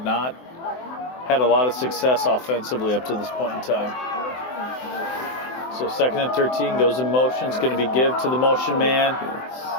not had a lot of success offensively up to this point in time. So second and 13 goes in motion. It's going to be give to the motion man.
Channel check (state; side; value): late; right; 24 ms